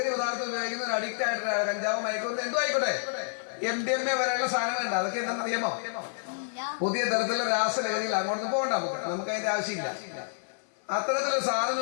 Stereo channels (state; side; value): silent; right; 59 dB below the other